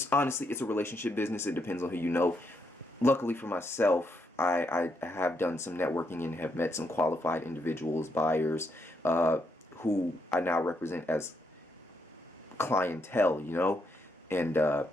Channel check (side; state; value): both; normal; correlation 0.78